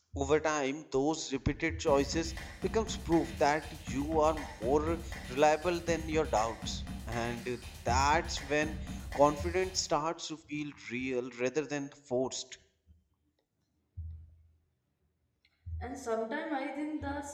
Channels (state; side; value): identical; both; correlation 1.00